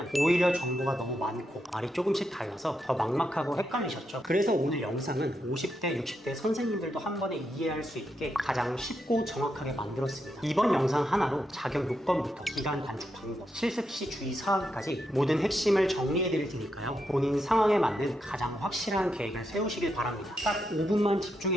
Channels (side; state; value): both; normal; correlation 0.83